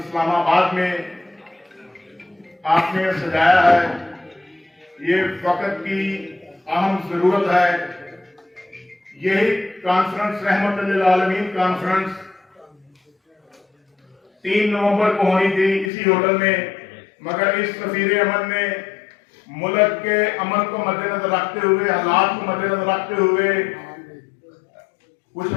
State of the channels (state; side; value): drops out; right; at 15.9 s